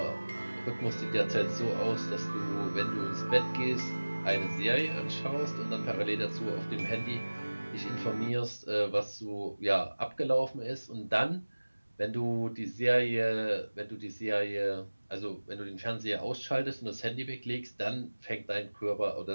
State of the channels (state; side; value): inverted; both; correlation -1.00